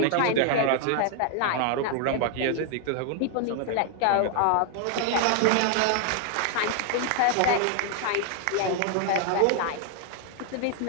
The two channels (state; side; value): different; both; correlation 0.00